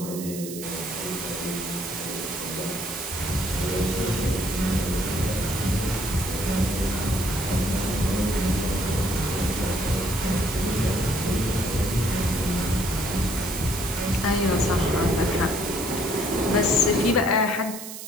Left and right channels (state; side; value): noise; right; hiss, 10 dB below the sound